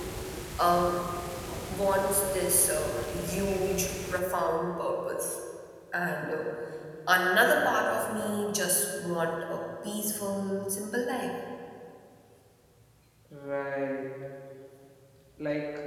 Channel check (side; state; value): both; identical; correlation 1.00